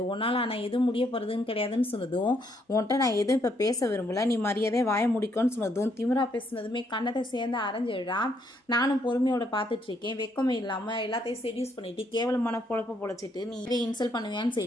உன்னால் ஆனால் எதுவும் முடிய போகிறதுன்னு கிடையாதுன்னு சொன்னதும் உன்கிட்ட நான் எதுவும் இப்போ பேச விரும்பல, நீ மரியாதையை வாய முடிக்கும்னு சொன்னதும் திமிரா பேசுனதுமே கண்ணத்தை சேர்ந்து அரைஞ்சிடுறான். நானும் பொறுமையோட பார்த்துட்டு இருக்கேன், வெக்கமே இல்லாமல் எல்லாத்தையும் செடியூஸ் பண்ணிட்டு கேவலமான பொழப்ப பொழைச்சிட்டு நீ இதே இன்சல்ட் பண்ணுவியான்னு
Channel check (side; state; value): both; normal; correlation 0.72